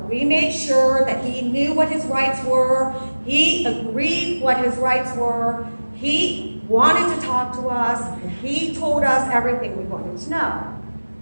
We made sure that he knew what his rights were. He agreed what his rights were. He wanted to talk to us. He told us everything we wanted to know.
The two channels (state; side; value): inverted; both; correlation -1.00